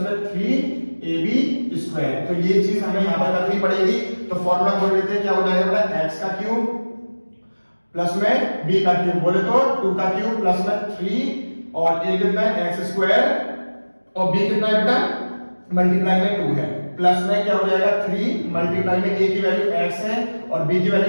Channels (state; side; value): inverted; both; correlation -1.00